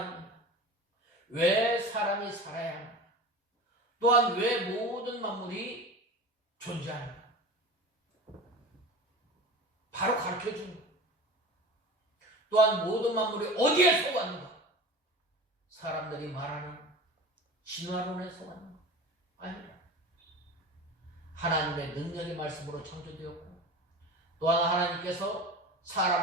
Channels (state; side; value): normal; both; correlation 0.33